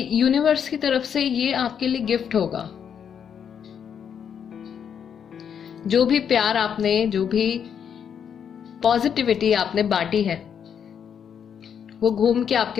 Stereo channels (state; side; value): quieter; right; 7.9 dB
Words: यूनिवर्स की तरफ से ये आपके लिए गिफ्ट होगा। जो भी प्यार आपने, जो भी पॉजिटिविटी आपने बांटी है, वो घूम के